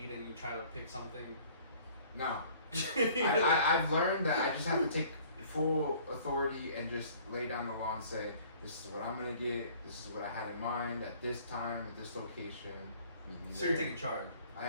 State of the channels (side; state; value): both; inverted; correlation -0.53